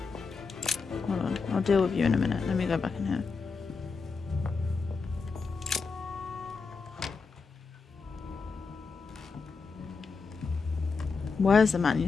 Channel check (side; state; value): right; quieter; 4.8 dB